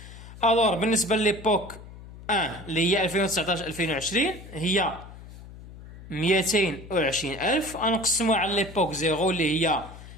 alors بالنسبه لليبوك 1 اللي هي 2019 2020 هي 220,000 غنقسموها على ليبوك 0 اللي هي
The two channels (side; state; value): left; noise; hum, 16 dB below the sound